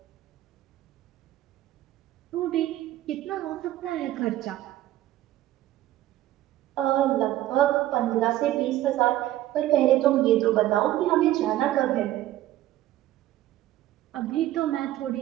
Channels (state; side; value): quieter; left; 14.3 dB